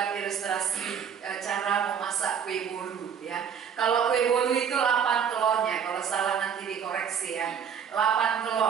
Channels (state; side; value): quieter; left; 7.6 dB